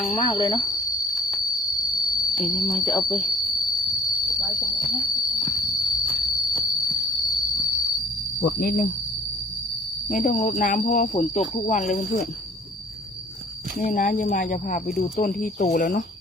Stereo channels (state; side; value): normal; both; correlation 0.53